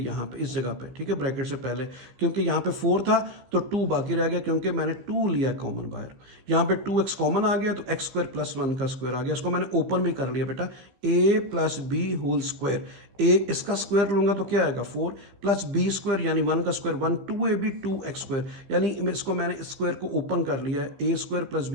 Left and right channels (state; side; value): late; left; 15 ms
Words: पे इस जगह पे, ठीक है, ब्रैकेट से पहले, क्योंकि यहाँ पे 4 था तो 2 बाकी रह गया, क्योंकि मैंने 2 लिया कॉमन बाहर। यहाँ पे 2x कॉमन आ गया तो एक्स स्क्वायर प्लस 1 का स्क्वायर आ गया। इसको मैंने ओपन भी कर लिया बेटा, a plus b whole square. a इसका स्क्वायर लूंगा तो क्या आएगा 4 प्लस बी स्क्वायर यानी 1 का स्क्वायर 1, 2ab 2x स्क्वायर, यानी इसको मैंने स्क्वायर को ओपन कर लिया है, a square plus